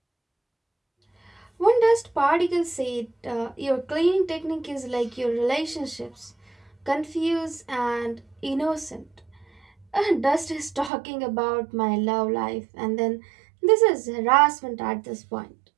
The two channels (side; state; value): left; drops out; at 10.9 s